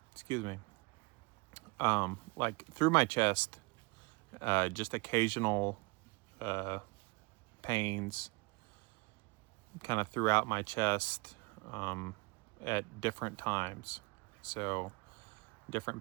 me. Like through my chest, just occasional pains kind of throughout my chest at different times. So different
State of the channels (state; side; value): quieter; left; 27.8 dB